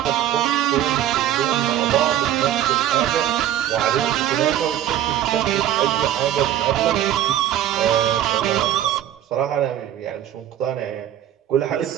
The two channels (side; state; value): left; quieter; 11.4 dB